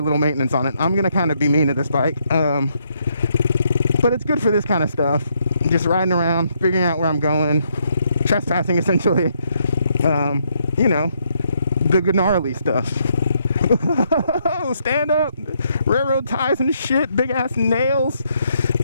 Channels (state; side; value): inverted; both; correlation -0.75